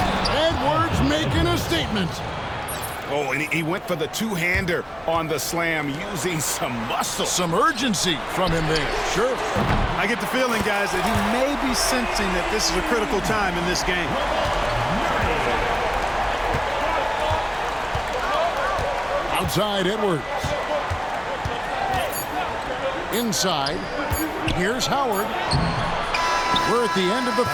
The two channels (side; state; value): both; identical; correlation 1.00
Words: Edwards making a statement. Oh, and he went for the two-hander on the slam using some muscle. Some urgency from him there. Sure. I get the feeling, guys, that he may be sensing that this is a critical time in this game. Outside Edwards. Inside. Here's Howard. We're at the end of the